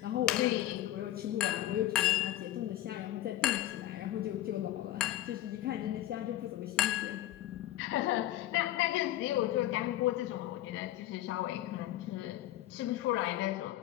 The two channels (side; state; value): right; quieter; 14.3 dB